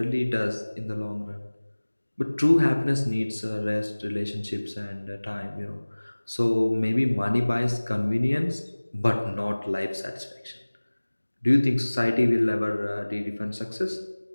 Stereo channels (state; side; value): inverted; both; correlation -1.00